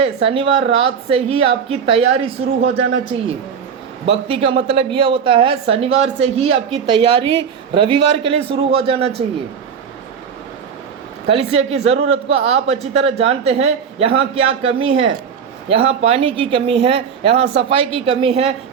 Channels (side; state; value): left; quieter; 7.0 dB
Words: शनिवार रात से ही आपकी तैयारी शुरू हो जाना चाहिए। भक्ति का मतलब यह होता है शनिवार से ही आपकी तैयारी रविवार के लिए शुरू हो जाना चाहिए। कलीसिया की ज़रूरत को आप अच्छी तरह जानते हैं। यहाँ क्या कमी है, यहाँ पानी की कमी है, यहाँ सफाई की कमी है,